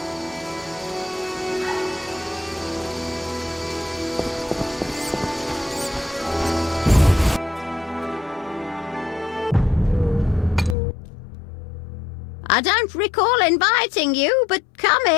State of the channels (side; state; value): right; drops out; at 10.8 s